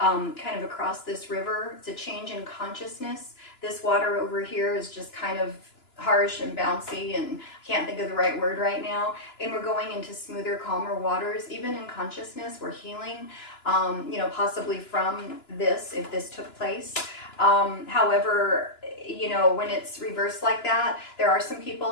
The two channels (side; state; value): right; late; 2.9 ms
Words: of across this river. It's a change in consciousness. This water over here is just kind of harsh and bouncy, and I can't think of the right word right now. And we're going into smoother, calmer waters. Even in consciousness, we're healing, you know, possibly from this, if this took place. However, you know, when it's reversed like that, there are some people